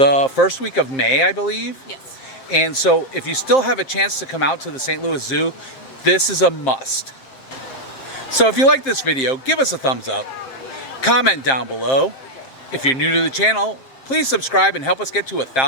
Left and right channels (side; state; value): right; late; 7.5 ms